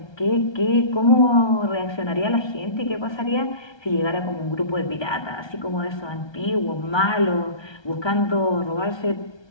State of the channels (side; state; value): right; late; 1.3 ms